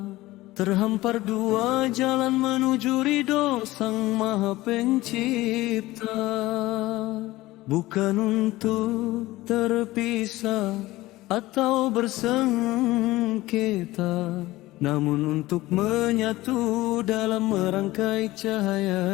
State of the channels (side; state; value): right; quieter; 18.2 dB